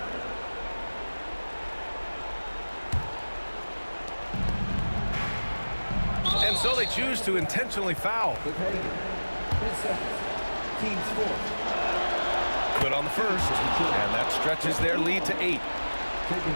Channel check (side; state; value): both; inverted; correlation -1.00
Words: And so they choose to intentionally foul. Good on the first, and that stretches their lead to 8.